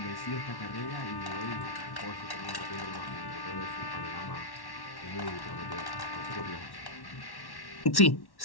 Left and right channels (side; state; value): right; late; 1.1 ms